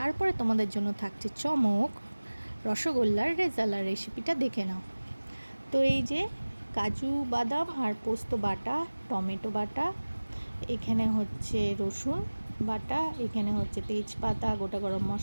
তোমাদের জন্য থাকছে চমক, রসগোল্লার রেজালার রেসিপিটা দেখে নাও। তো এই যে কাজু বাদাম আর পোস্ত বাটা, টমেটো বাটা, এখানে হচ্ছে রসুন বাটা, এখানে হচ্ছে তেজপাতা, গোটা গরম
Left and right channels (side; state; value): both; inverted; correlation -1.00